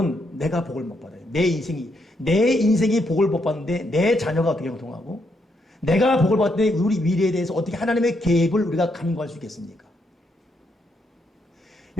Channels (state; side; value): normal; both; correlation 0.78